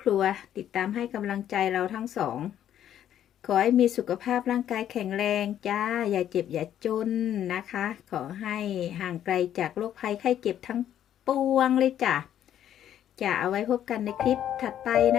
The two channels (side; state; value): right; quieter; 10.7 dB